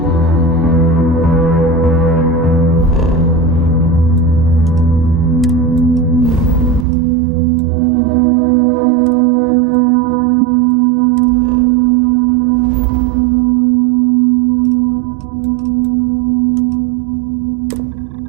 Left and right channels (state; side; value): drops out; left; at 6.9 s